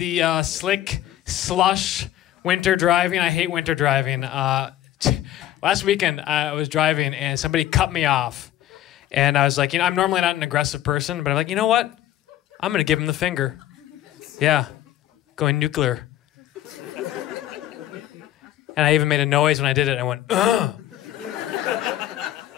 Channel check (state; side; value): quieter; right; 13.1 dB